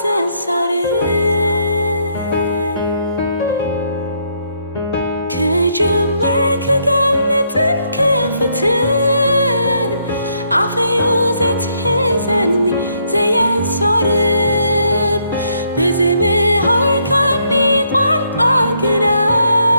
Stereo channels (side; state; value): both; inverted; correlation -0.73